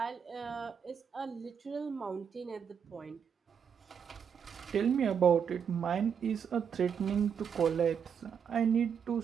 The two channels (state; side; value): quieter; left; 7.4 dB